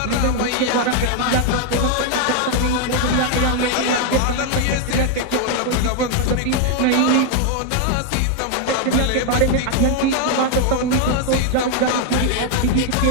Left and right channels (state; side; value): different; both; correlation 0.00